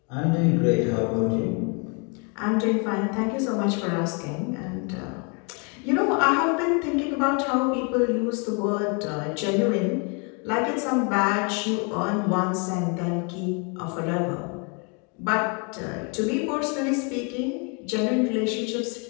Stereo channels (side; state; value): right; quieter; 34.9 dB